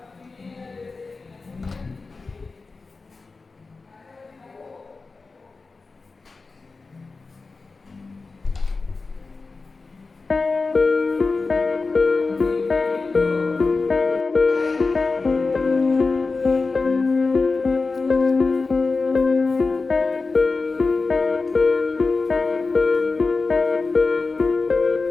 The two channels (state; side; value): quieter; right; 4.0 dB